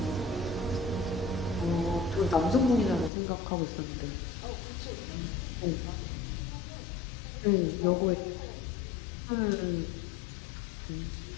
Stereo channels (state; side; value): drops out; right; at 3.1 s